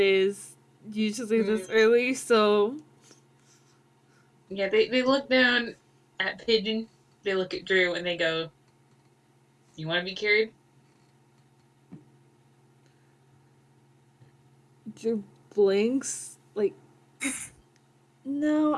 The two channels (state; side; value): identical; both; correlation 1.00